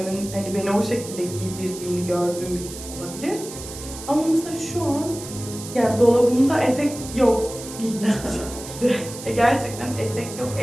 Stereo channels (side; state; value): right; noise; hiss, 12 dB below the sound